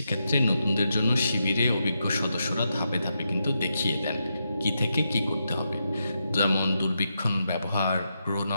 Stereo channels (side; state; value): both; inverted; correlation -0.84